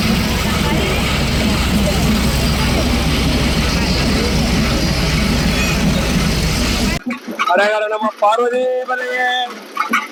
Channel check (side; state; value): both; identical; correlation 1.00